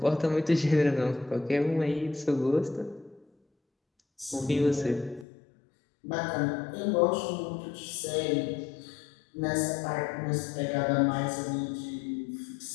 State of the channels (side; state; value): right; drops out; at 5.2 s